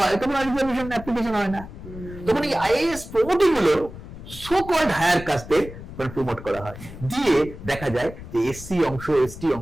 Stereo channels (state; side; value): noise; left; rumble, 14 dB below the sound